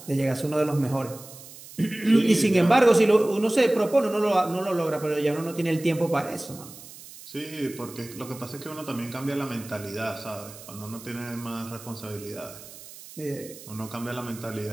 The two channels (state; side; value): noise; right; hiss, 17 dB below the sound